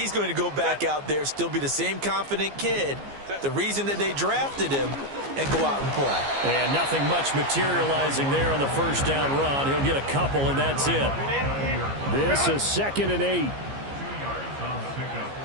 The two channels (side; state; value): left; late; 15 ms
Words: going to go back out there, still be the same confident kid, the reason that they drafted him, and go out and play. And nothing much materializing there on the first down run. He'll get a couple, and that's it. This is 2nd and 8. 2 yards on the pickup.